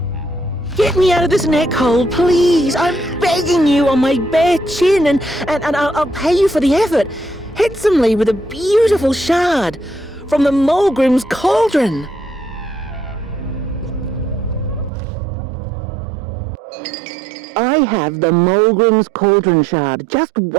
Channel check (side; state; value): left; drops out; at 14.9 s